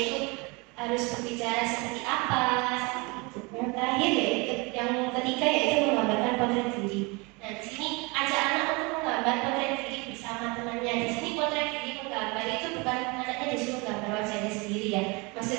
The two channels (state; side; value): quieter; left; 27.7 dB